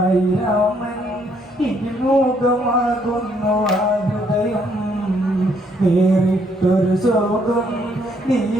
രാമൻ ഇതിമൂകമാകുന്നു ആ ഹൃദയം വേറിട്ടൊരു ശോകം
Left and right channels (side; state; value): both; normal; correlation 0.69